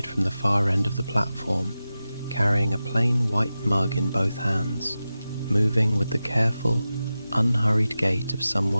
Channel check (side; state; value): both; inverted; correlation -0.93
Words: from the far end of the platform, carrying a plain white mug in both hands, moving with the careful, unhurried gait of